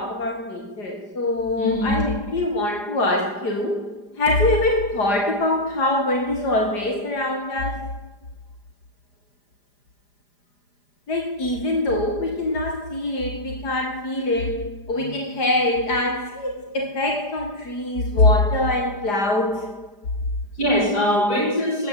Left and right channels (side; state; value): right; late; 4.9 ms